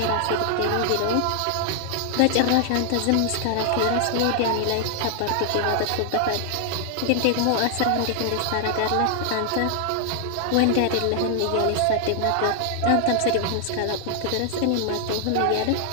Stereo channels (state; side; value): different; both; correlation 0.00